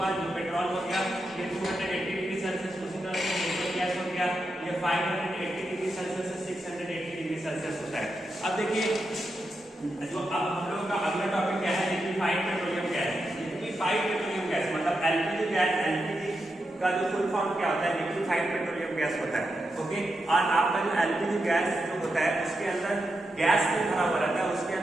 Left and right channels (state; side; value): normal; both; correlation 0.87